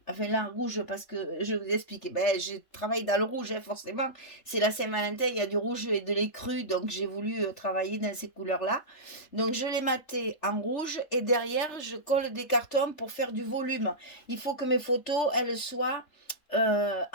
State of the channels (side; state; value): right; late; 3.4 ms